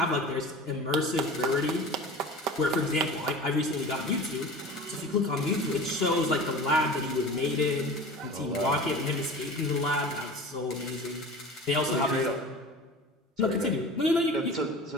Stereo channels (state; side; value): normal; both; correlation 0.37